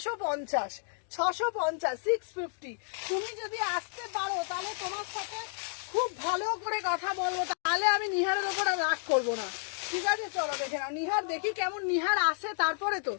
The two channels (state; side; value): silent; right; digital silence